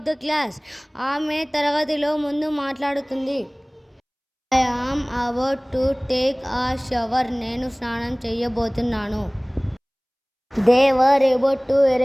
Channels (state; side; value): identical; both; correlation 1.00